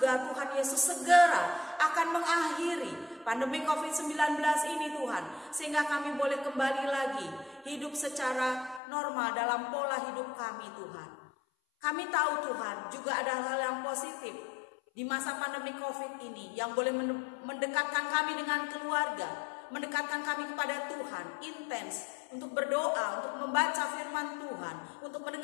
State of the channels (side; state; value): right; drops out; at 8.8 s